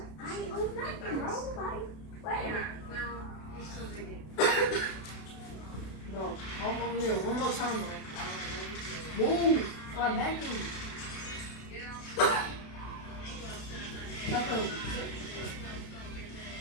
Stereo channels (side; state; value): right; late; 32 ms